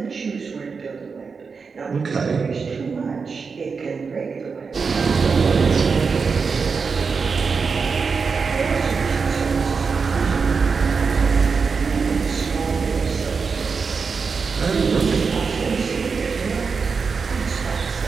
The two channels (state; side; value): quieter; left; 5.2 dB